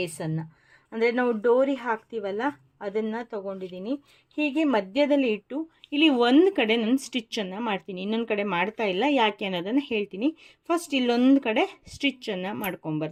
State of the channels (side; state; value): both; identical; correlation 1.00